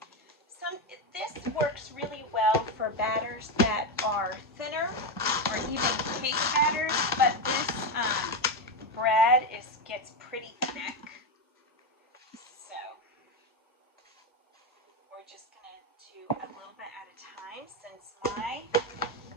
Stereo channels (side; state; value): both; normal; correlation 0.10